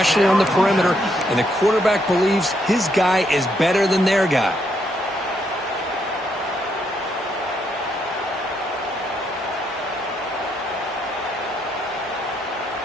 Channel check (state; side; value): normal; both; correlation 0.76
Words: on the perimeter. And the quarterback believes his guy is better than their guy.